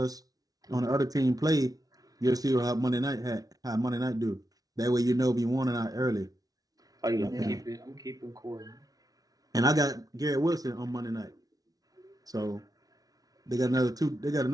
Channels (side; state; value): left; late; 0.18 ms